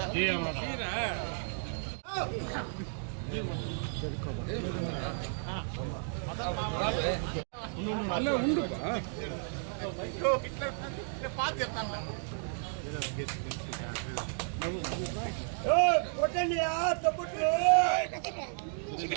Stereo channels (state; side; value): silent; left; digital silence